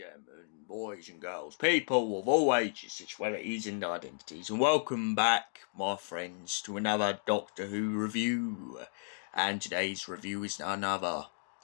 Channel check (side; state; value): right; silent; digital silence